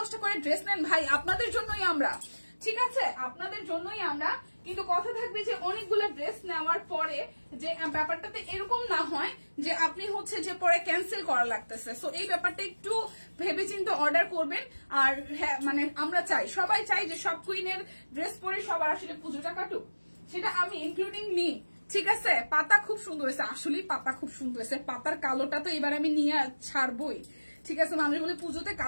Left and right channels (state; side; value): inverted; both; correlation -1.00